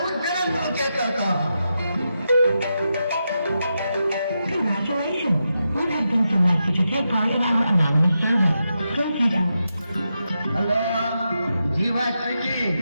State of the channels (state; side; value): inverted; both; correlation -0.87